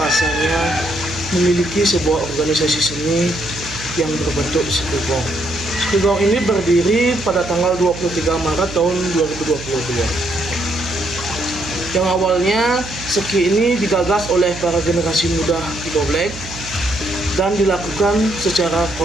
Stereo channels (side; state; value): right; noise; hum, 13 dB below the sound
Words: memiliki sebuah organisasi seni yang berbentuk Sekegong. Sekegong ini berdiri pada tanggal 23 Maret tahun 2022. Yang awalnya Seki ini digagas oleh para generasi muda di Goblek dan dilakukan secara